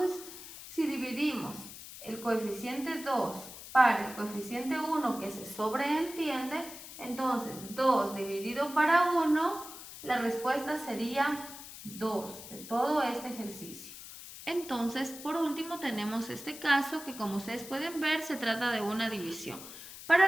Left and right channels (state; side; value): noise; left; hiss, 13 dB below the sound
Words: si dividimos el coeficiente 2 para el coeficiente 1 que se sobreentiende, entonces 2 dividido para 1, la respuesta sería 2 de todo este ejercicio. Entonces, por último tenemos este caso que, como ustedes pueden ver, se trata de una división.